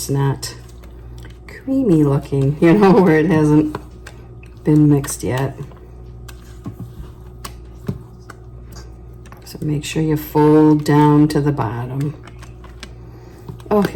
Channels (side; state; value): both; identical; correlation 1.00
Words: not creamy looking, you know, where it hasn't been mixed yet. So make sure you fold down to the bottom. Oh,